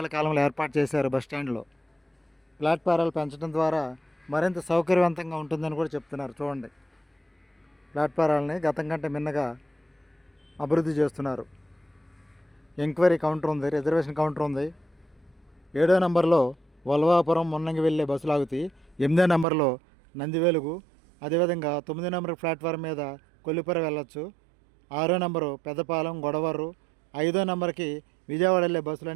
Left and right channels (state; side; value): drops out; left; at 19.5 s